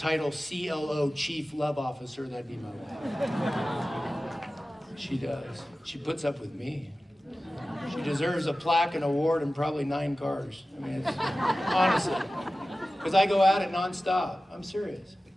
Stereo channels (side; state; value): both; normal; correlation 0.96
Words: CLO, Chief Love Officer, that'd be my wife. She does. She puts up with me. She deserves a plaque, an award, and probably 9 cars. I mean, it's, honestly. Because I go at it nonstop. I'm serious.